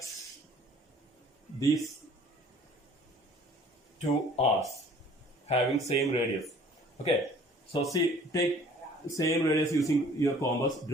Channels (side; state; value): both; normal; correlation 0.53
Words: these 2 arcs having same radius. Okay, so see, take same radius using your compass,